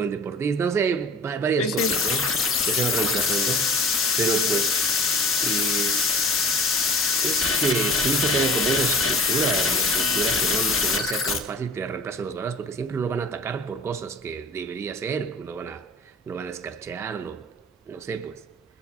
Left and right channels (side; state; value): both; normal; correlation 0.42